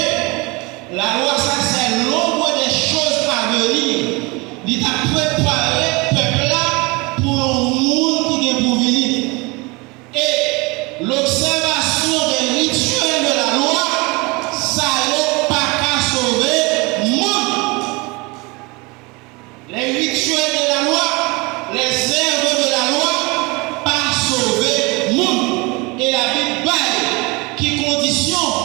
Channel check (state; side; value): quieter; left; 26.1 dB